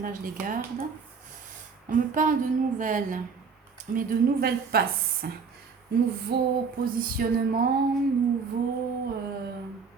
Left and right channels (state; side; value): quieter; left; 5.4 dB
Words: je les garde. On me parle de nouvelles, mais de nouvelles passes. Nouveau positionnement, nouveau